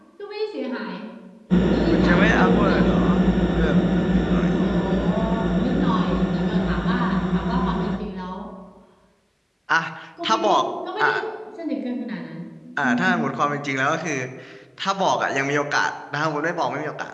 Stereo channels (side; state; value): both; identical; correlation 1.00